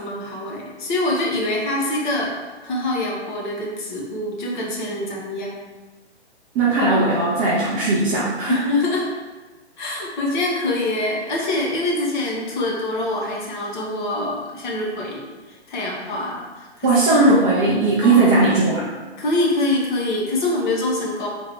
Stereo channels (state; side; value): normal; both; correlation -0.05